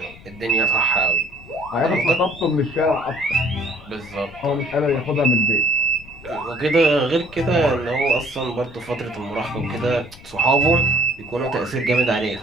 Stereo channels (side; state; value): left; noise; rumble, 20 dB below the sound